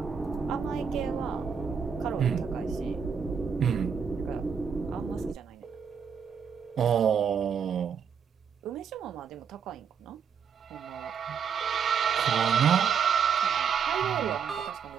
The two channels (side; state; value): left; quieter; 6.8 dB